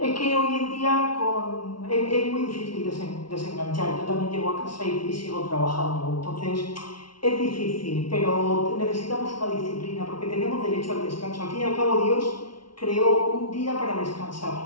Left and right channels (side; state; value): right; late; 0.73 ms